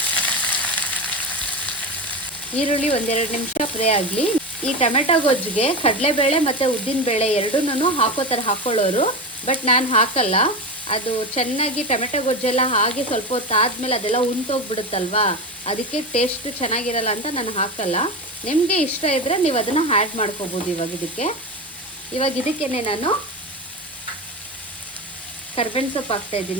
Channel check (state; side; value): normal; both; correlation 0.21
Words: ಈರುಳ್ಳಿ 1-2 ನಿಮಿಷ ಫ್ರೈ ಆಗಲಿ. ಈ ಟೊಮೆಟೊ ಗೊಜ್ಜಿಗೆ ಕಡಲೆಬೇಳೆ ಮತ್ತು ಉದ್ದಿನಬೇಳೆ ಎರಡೂ ಹಾಕೊಳ್ಳೋರು, ಬಟ್ ನಾನು ಹಾಕಲ್ಲ. ಅದು ಚೆನ್ನಾಗಿ ಟೊಮೆಟೊ ಗೊಜ್ಜೆಲ್ಲ ಹಾಗೆ ಸ್ವಲ್ಪ ಹೊತ್ತು ಆದಮೇಲೆ ಅದೆಲ್ಲ ಉಂಟೋಗ್ಬಿಡುತ್ತಲ್ವಾ, ಅದಕ್ಕೆ ಟೇಸ್ಟ್ ಚೆನ್ನಾಗಿರಲ್ಲ ಅಂತ ನಾನು ಹಾಕಲ್ಲ. ನಿಮಗೆ ಇಷ್ಟ ಇದ್ದರೆ ನೀವು ಅದನ್ನು ಆ್ಯಡ್ ಮಾಡ್ಕೋಬೋದು. ಇವಾಗ ಇದಕ್ಕೇನೆ ನಾನು ಕರ್ಬೇವಿನ ಸೊಪ್ಪು